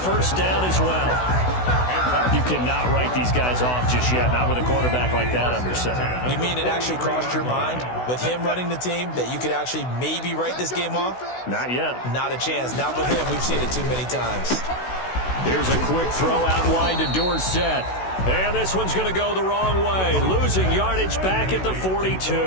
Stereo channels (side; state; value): right; late; 16 ms